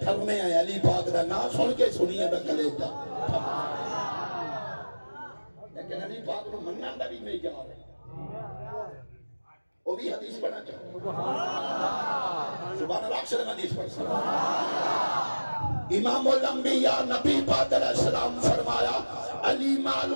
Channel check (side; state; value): both; inverted; correlation -1.00